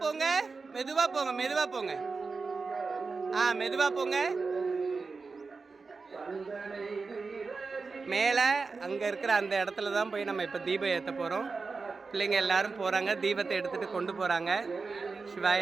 போங்க. மெதுவா போங்க, மெதுவா போங்க. மெதுவா போங்க. மேலே அங்கே இருக்கிற அந்த இடத்துல தான் போய் நம்ம இப்போ தீபம் ஏற்ற போகிறோம். பிள்ளைங்க எல்லாரும் போகிறாங்க, தீபத்தை எடுத்துகிட்டு கொண்டு போகிறாங்க.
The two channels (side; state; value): left; quieter; 4.4 dB